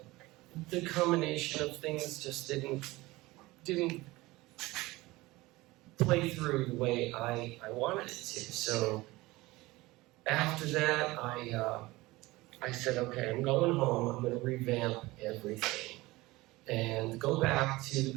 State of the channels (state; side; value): quieter; left; 20.3 dB